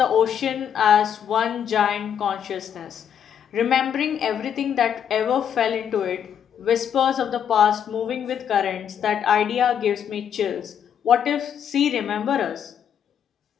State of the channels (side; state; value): right; quieter; 8.6 dB